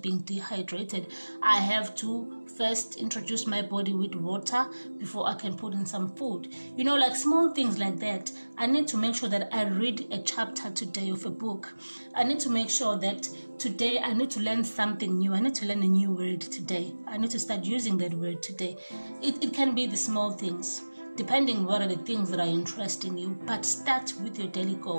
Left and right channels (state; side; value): inverted; both; correlation -1.00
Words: dehydrated. I have to first introduce my body with water before I can put in some food. You know, like small things like that. I need to make sure that I read a chapter today of a book. I need to make sure that today I need to learn something new. I need to learn a new word today. I need to start using that word today. It can be the small things, depending what are the things that are interesting you. But start with your daily